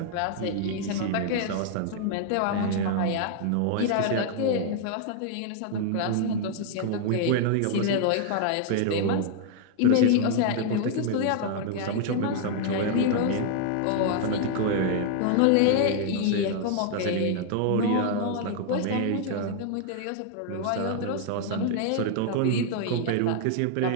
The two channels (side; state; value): both; different; correlation 0.00